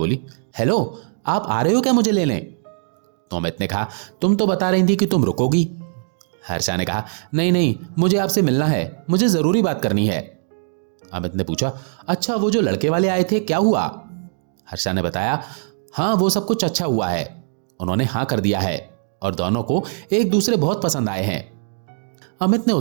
हेलो, आप आ रहे हो क्या मुझे लेने? तो अमित ने कहा, तुम तो बता रही थी कि तुम रुकोगी। हर्षा ने कहा, नहीं नहीं, मुझे आपसे मिलना है, मुझे जरूरी बात करनी है। अमित ने पूछा, अच्छा वो जो लड़के वाले आए थे क्या हुआ? हर्षा ने बताया, हाँ वो सब कुछ अच्छा हुआ है, उन्होंने हाँ कर दिया है और दोनों को एक दूसरे बहुत पसंद आए हैं। अमित ने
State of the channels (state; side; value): silent; left; digital silence